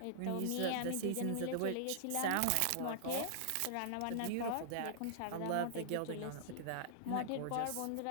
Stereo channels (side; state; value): both; different; correlation -0.01